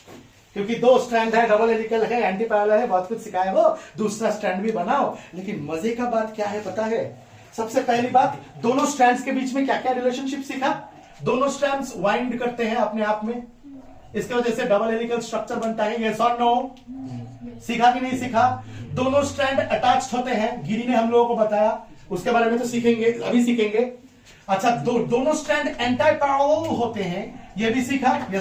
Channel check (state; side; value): identical; both; correlation 1.00